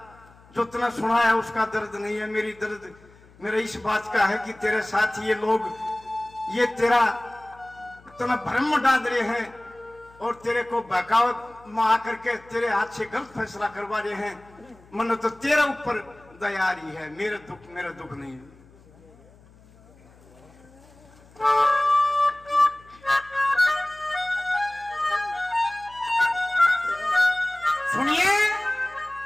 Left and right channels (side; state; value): left; noise; hum, 26 dB below the sound